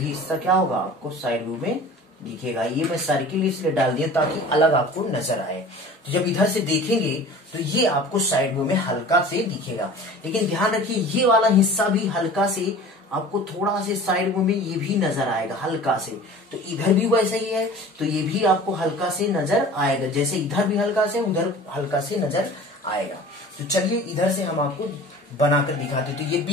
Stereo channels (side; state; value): both; normal; correlation 0.42